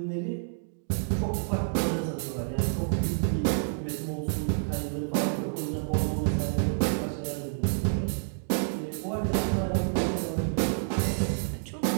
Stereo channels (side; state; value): left; silent; digital silence